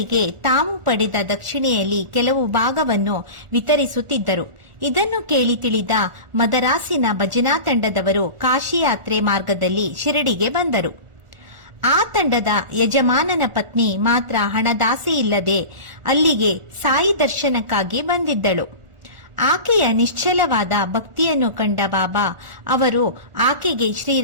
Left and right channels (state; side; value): late; left; 1.4 ms